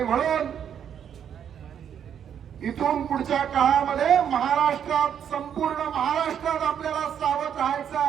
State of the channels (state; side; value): quieter; left; 8.7 dB